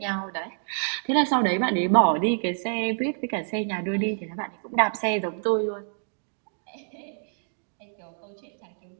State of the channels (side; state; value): left; silent; digital silence